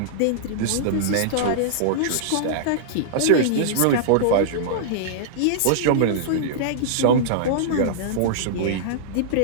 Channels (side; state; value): both; different; correlation -0.02